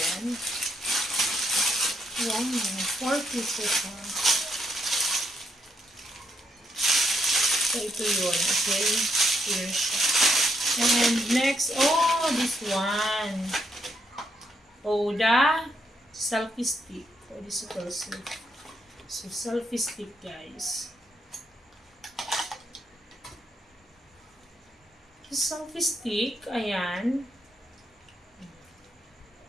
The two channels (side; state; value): both; normal; correlation 0.76